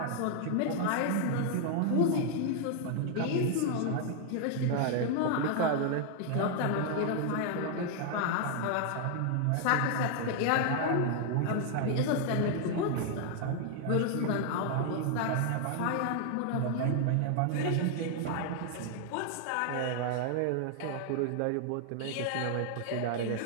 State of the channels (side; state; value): both; different; correlation 0.00